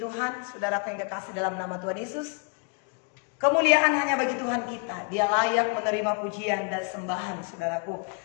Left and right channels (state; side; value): quieter; right; 37.6 dB